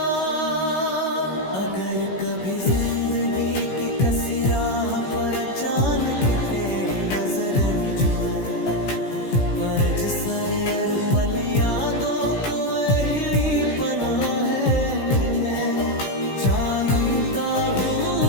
अगर कभी जिंदगी की कसी राह पर अचानक तेरी नजर में जुए, परज सर अर पल यादों को वही पनाह है। मैं जानता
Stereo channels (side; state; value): right; late; 16 ms